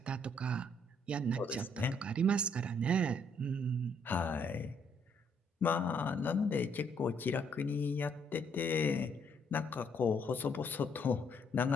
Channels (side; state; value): both; normal; correlation 0.69